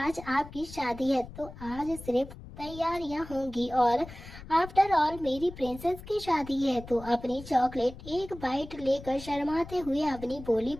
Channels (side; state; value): left; noise; rumble, 15 dB below the sound